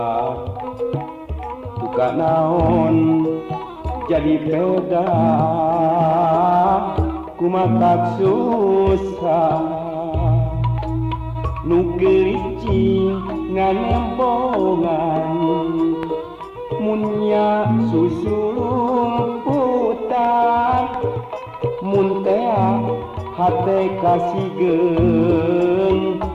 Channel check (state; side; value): identical; both; correlation 1.00